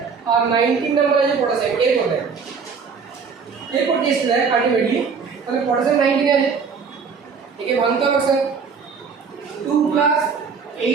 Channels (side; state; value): left; quieter; 5.6 dB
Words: আর 19 নাম্বার আছে পটাশিয়াম এরপর টেস্ট দেয় আলটিমেটলি তাহলে পটাশিয়াম 19 আছে একে ভাঙতে হবে স্যার 2 প্লাস